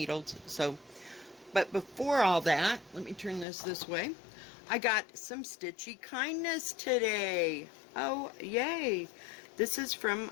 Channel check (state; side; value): drops out; right; at 3.5 s